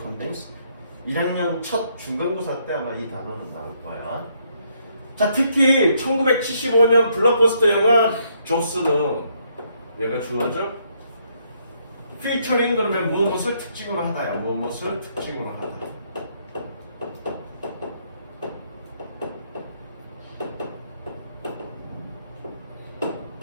1학년 첫 중간고사 때 아마 이 단어는 나올 거야. 자, 특히 1975년 블록버스터 영화 조스는 얘가 주어져. 피처링 그러면 무엇을 특징으로 하다야. 무엇을 특징으로 하다.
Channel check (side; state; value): both; inverted; correlation -0.72